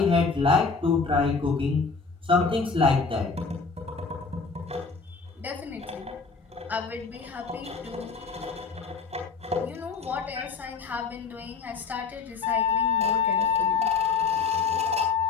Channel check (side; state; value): right; quieter; 4.9 dB